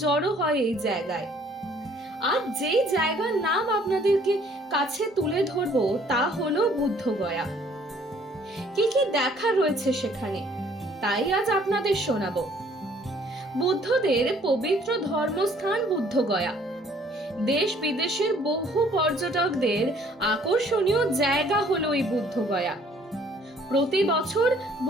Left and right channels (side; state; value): both; normal; correlation 0.59